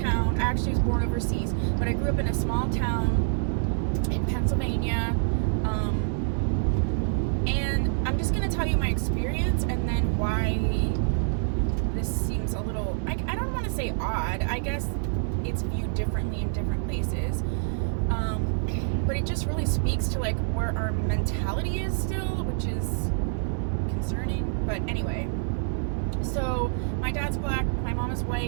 I actually was born overseas, but I grew up in a small town in Pennsylvania, and I'm just going to tell you my experience and then why this seems a little, I don't want to say odd. I guess it's viewed differently in different places. But it just really speaks to, like, where our mentality is still, which is concerning. But anyway, so my dad's black, my mom is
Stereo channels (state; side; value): silent; left; 60 dB below the other